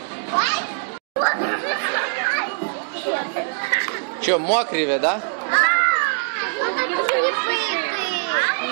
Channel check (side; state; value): left; silent; 58 dB below the other